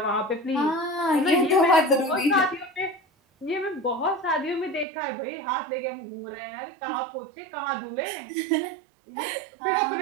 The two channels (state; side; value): drops out; left; at 4.9 s